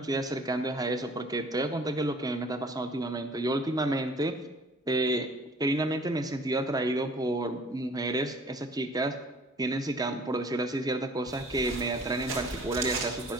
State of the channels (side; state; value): both; normal; correlation 0.51